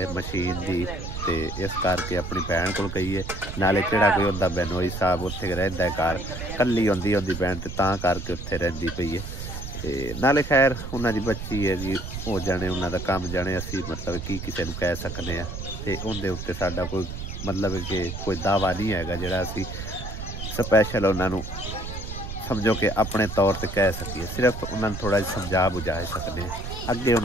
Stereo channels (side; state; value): right; noise; rumble, 7 dB below the sound